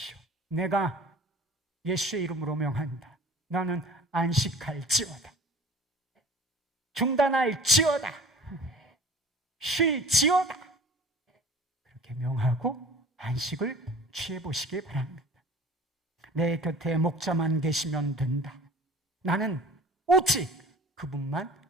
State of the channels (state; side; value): normal; both; correlation 0.45